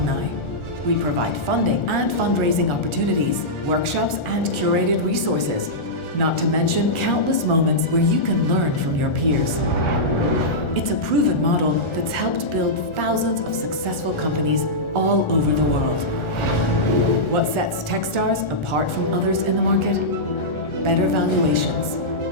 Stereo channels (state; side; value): late; right; 1.4 ms